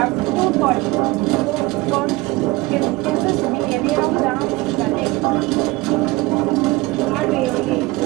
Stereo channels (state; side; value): quieter; left; 21.3 dB